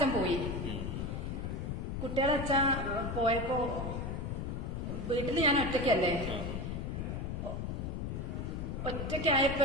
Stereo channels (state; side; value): noise; left; rumble, 3 dB below the sound